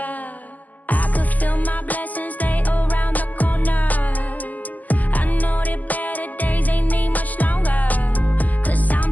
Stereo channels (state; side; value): late; right; 0.080 ms